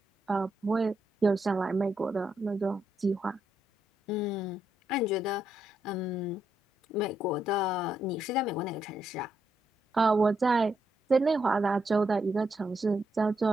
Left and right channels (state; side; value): normal; both; correlation 0.79